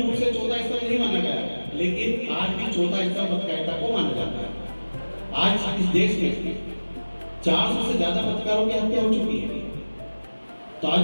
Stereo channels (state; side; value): inverted; both; correlation -1.00